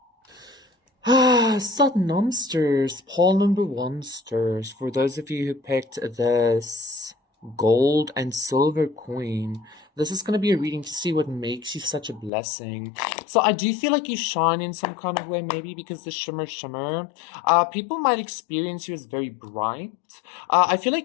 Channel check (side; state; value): right; drops out; at 12.3 s